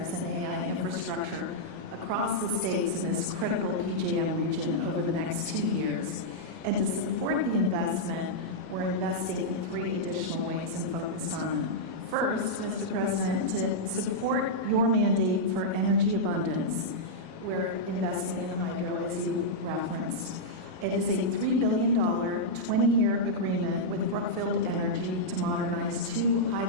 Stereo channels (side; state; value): left; late; 38 ms